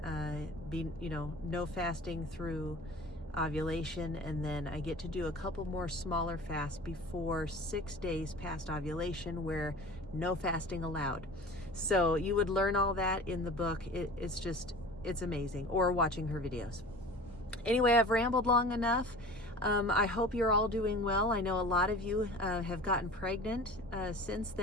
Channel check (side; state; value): both; normal; correlation 0.39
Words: no fasting through ovulation, and then I get to do a couple more smaller fasts before 6 days past ovulation, where no fasting allowed. So you would learn all that in the book. It's amazing, or watching her videos. Anyway, I've rambled long enough. I hope you're all doing well. I know a lot of you have gotten pregnant since